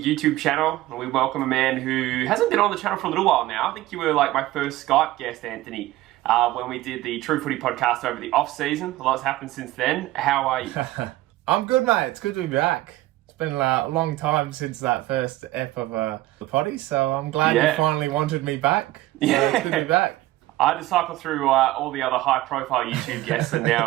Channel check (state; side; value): quieter; left; 16.6 dB